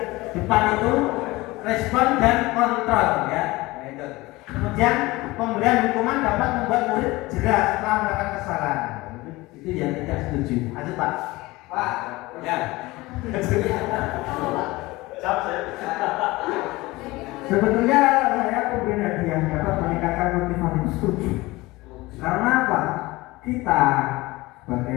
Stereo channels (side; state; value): right; quieter; 20.7 dB